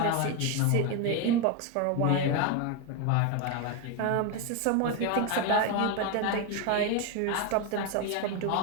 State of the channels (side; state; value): both; different; correlation 0.02